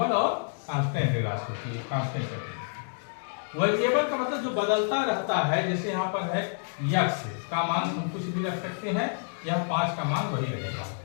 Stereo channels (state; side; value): silent; right; digital silence